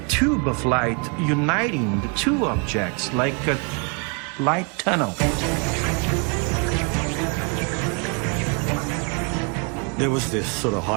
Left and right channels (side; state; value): left; quieter; 34.2 dB